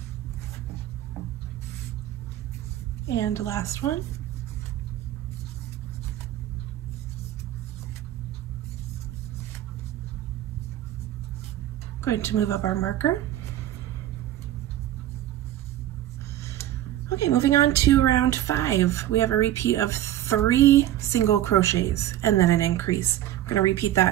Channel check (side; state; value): left; quieter; 12.9 dB